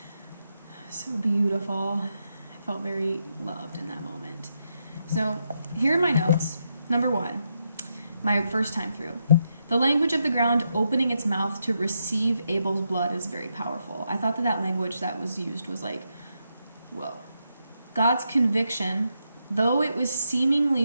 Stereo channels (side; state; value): both; inverted; correlation -0.82